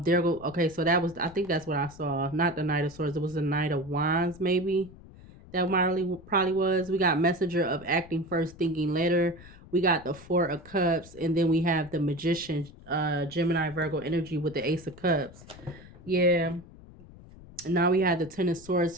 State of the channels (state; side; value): noise; left; rumble, 20 dB below the sound